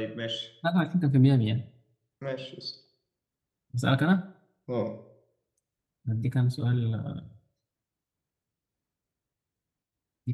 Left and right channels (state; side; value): identical; both; correlation 1.00